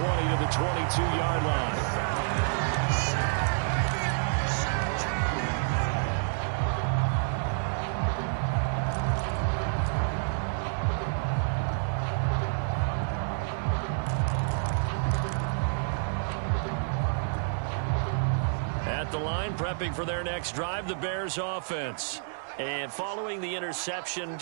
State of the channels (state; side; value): silent; left; 59 dB below the other